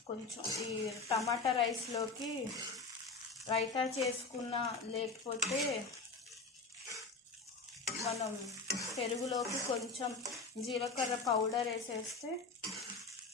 కొంచెం ఈ టమాటా రైస్లోకి రైతా చేసుకున్న, లేకపోతే మనం పెరుగులోకి కొంచెం జీలకర్ర పౌడర్ వేసేస్తే,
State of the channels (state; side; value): quieter; right; 4.0 dB